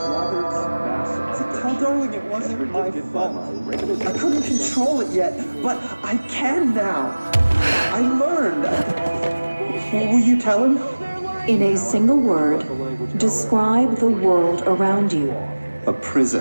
Tell Darling it wasn't my fault. I couldn't control it yet, but I can now. I learned. What will you tell him? In a single word, describe the world around you. A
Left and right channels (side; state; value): both; inverted; correlation -1.00